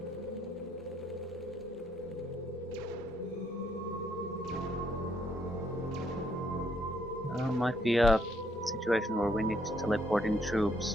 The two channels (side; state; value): both; normal; correlation 0.71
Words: Might be a situation where we need to teleport in